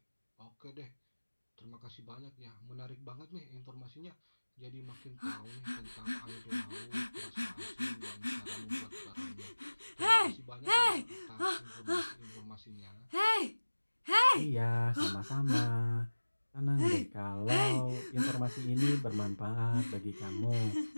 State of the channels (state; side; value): inverted; both; correlation -1.00